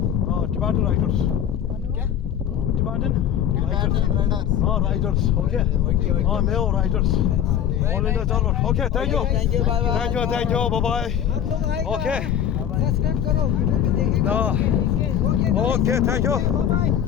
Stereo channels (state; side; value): quieter; right; 9.6 dB